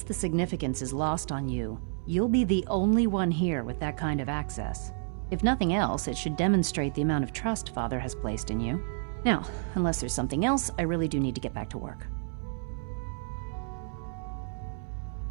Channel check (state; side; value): silent; left; 58 dB below the other